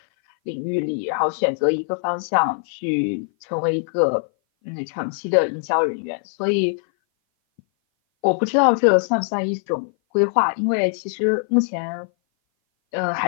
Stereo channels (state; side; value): silent; right; 58 dB below the other